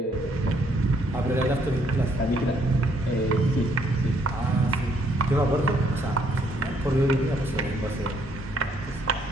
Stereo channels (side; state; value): both; normal; correlation 0.69